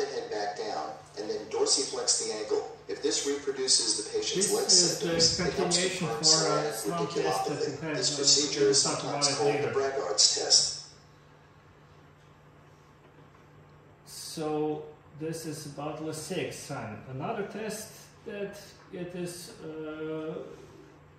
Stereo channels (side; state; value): both; identical; correlation 1.00